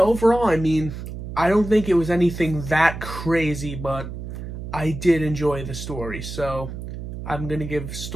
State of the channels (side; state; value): right; noise; hum, 8 dB below the sound